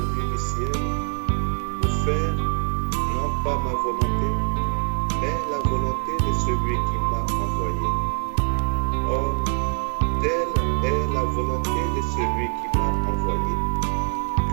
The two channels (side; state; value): left; quieter; 39.4 dB